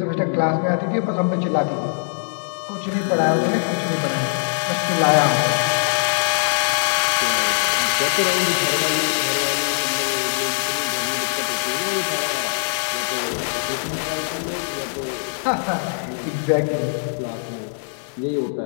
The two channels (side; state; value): right; silent; digital silence